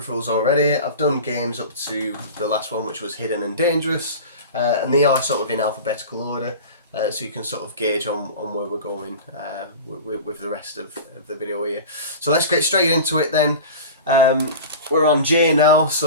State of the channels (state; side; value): inverted; both; correlation -0.33